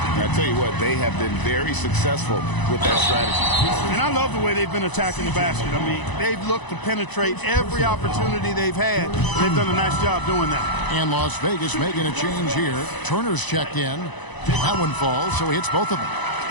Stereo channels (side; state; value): right; late; 1.0 ms